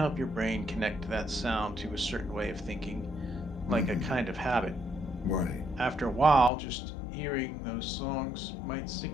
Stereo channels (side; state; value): right; drops out; at 6.5 s